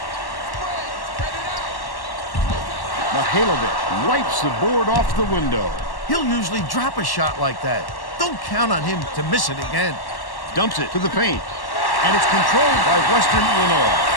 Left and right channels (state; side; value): late; right; 1.1 ms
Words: Mihailovic wipes the board off the window. He'll usually drop a shot like that. Don't count on him to miss it again. Dumps it to the paint. And it's controlled by Western Illinois.